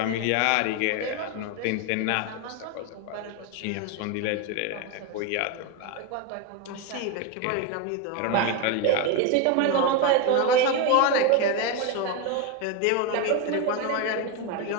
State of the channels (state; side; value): different; both; correlation 0.02